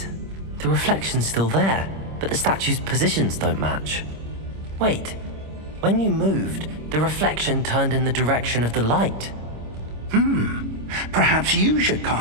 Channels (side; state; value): left; late; 26 ms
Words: The reflection's still there, but the statue's positions don't match. Wait, when you moved, the reflection turned in the direction of the light. Perhaps you should